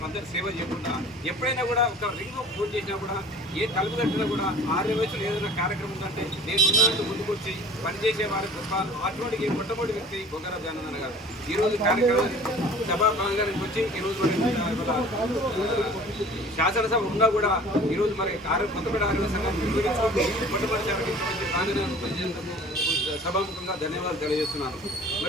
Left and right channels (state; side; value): normal; both; correlation 0.46